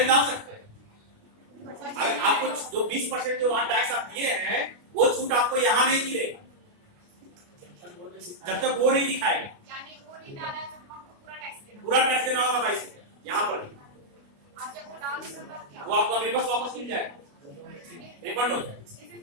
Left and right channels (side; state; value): left; late; 29 ms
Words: डाल सकते हैं, अगर आपको जो 20% जो वहां टैक्स आप दिए हैं वो छूट आपको यहाँ नहीं मिलेगा जब तक वो नहीं दिखाएगा। यानी वो नहीं डाला है तो हमको पूरा टैक्स देना होगा 22 रुपया यहाँ पर भी। आज जब वो डाल देगा तब क्या? वो आपका रिवर्स वापस मिल जाएगा, रिफंड हो जाएगा।